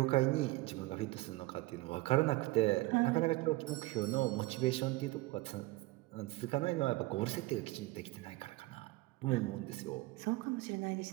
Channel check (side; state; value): left; quieter; 20.5 dB